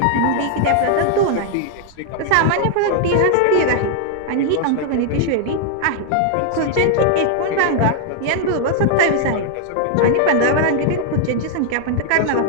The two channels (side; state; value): both; different; correlation 0.00